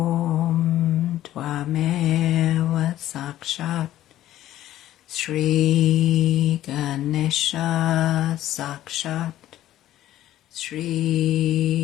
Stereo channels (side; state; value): right; quieter; 13.5 dB